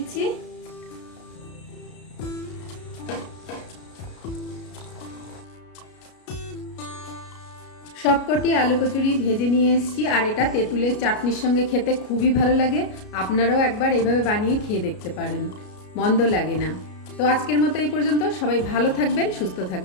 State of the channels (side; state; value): right; late; 33 ms